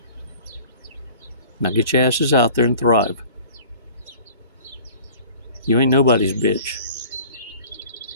Now get your asses out there and thrive. You ain't nobody's bitch.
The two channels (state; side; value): inverted; both; correlation -0.46